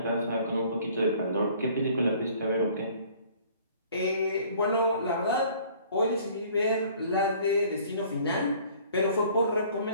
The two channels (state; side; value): inverted; both; correlation -0.54